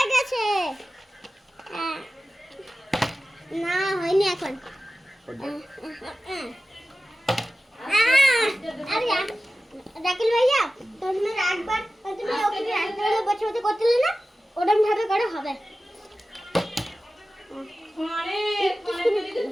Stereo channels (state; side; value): normal; both; correlation 0.95